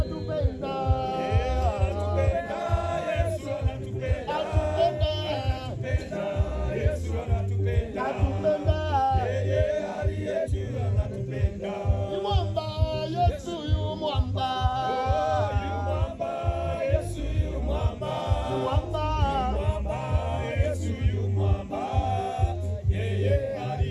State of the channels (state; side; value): identical; both; correlation 1.00